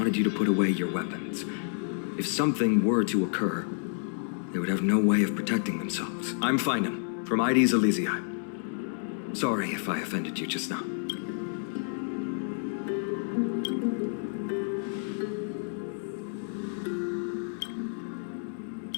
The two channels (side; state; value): right; silent; 58 dB below the other